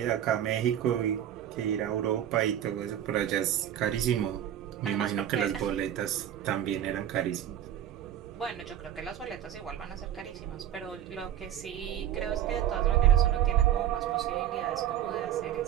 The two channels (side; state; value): left; quieter; 10.8 dB